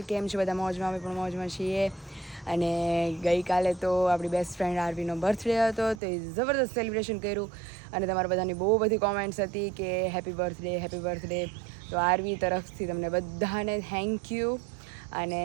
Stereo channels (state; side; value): drops out; left; at 6.0 s